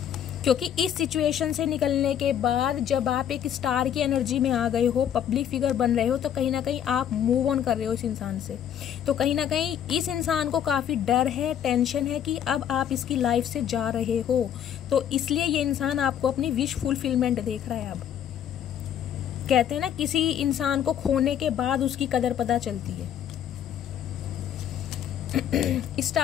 क्योंकि इस सिचुएशन से निकलने के बाद जब आप एक स्टार की एनर्जी में आ गए हो, पब्लिक फिगर बन रहे हो, तो कहीं ना कहीं आप मूव ऑन कर रहे हो इस इंसान से। तो कहीं ना कहीं इस इंसान को काफी डर है, टेंशन है कि अब आप इसकी लाइफ से जा रहे हो, तो इसलिए ये इंसान आपको अपनी विश फुलफिलमेंट देख रहा है। अब कहते हैं ना, किसी इंसान को खोने के बाद उसकी कदर पता चलती है।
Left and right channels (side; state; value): right; quieter; 9.6 dB